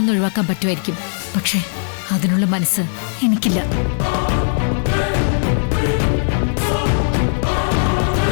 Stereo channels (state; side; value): silent; right; digital silence